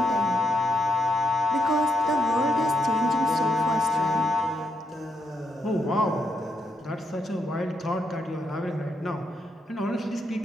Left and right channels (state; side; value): normal; both; correlation 0.80